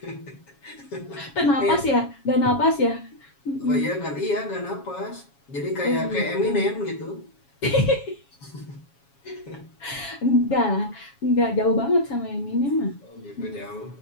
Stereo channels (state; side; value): late; right; 7.2 ms